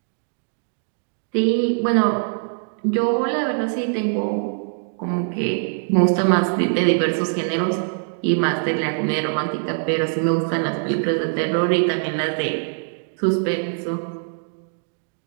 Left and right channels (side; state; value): left; silent; digital silence